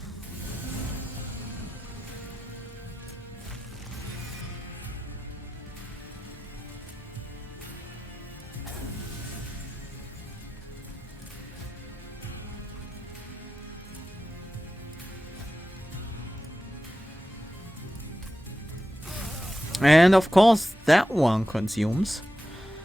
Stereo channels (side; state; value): both; normal; correlation 0.92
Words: And of course that one consumes.